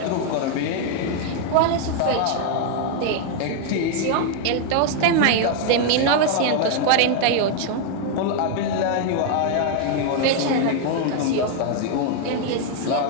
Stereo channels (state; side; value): different; both; correlation 0.00